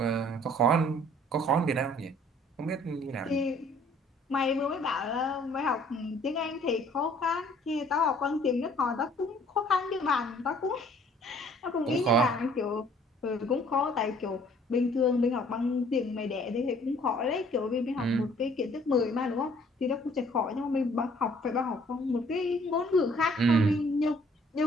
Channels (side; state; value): both; normal; correlation 0.58